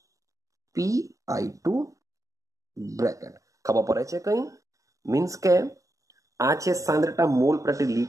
PI2 bracket. ખબર પડે છે કંઈ? મીન્સ કે આ છે સાંદ્રતા મોલ પ્રતિ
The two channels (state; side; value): late; left; 0.16 ms